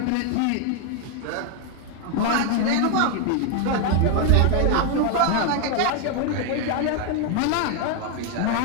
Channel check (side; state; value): both; different; correlation 0.01